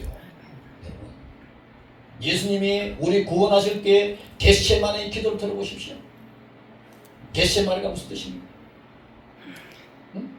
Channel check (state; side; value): identical; both; correlation 1.00